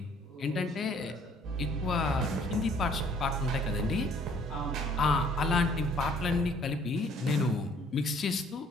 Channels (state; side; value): normal; both; correlation 0.59